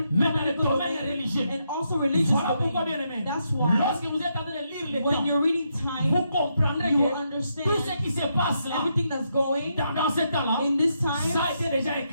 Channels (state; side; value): inverted; both; correlation -0.80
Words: mais dans le political domaine domain, religieux. and also religious Voilà pourquoi, bien domain. aimé, That's why lorsque vous êtes en train de lire les when temps, you're reading time, vous comprendrez you will que understand tout ce qui se passe là, everything that's going dans ce temps-là, in this time. ça a été déjà